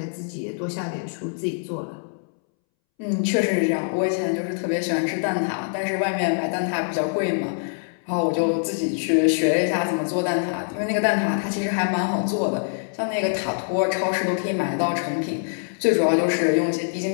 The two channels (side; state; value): right; silent; 63 dB below the other